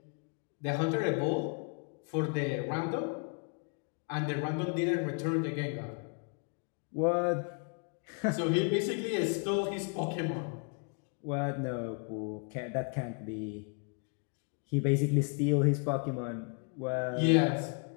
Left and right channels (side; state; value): right; quieter; 38.9 dB